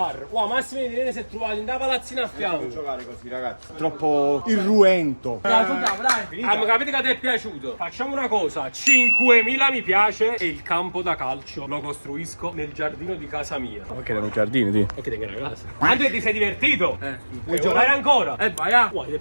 Wow, Massimo e Irene si è trovato in da palazzina a fianco. Giocare così, ragazzi. Troppo irruento. Dai. Capite che ti è piaciuto? Facciamo una cosa: 5.000 mi piace e il campo da calcio lo costruisco nel giardino di casa mia. Ok, erano giardini, ti. E che tengo una casa. Andrea, ti sei divertito? Vuoi giocare ancora? Vai a. Ti è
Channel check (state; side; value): inverted; both; correlation -1.00